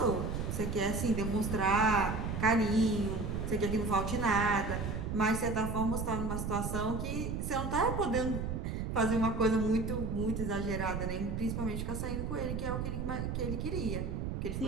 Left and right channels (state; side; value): noise; right; rumble, 2 dB below the sound